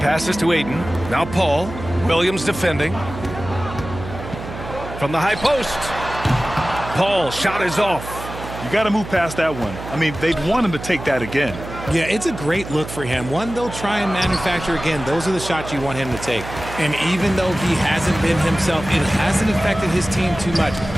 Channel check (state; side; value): noise; right; hum, 11 dB below the sound